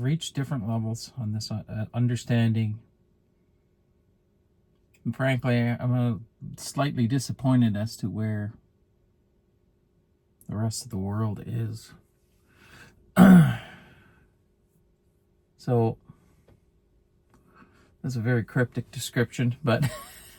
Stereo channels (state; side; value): identical; both; correlation 1.00